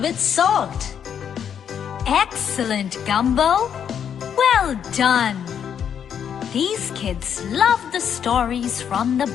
with salt. Excellent, Gumbo. Well done. These kids love the stories from the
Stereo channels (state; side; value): quieter; right; 8.3 dB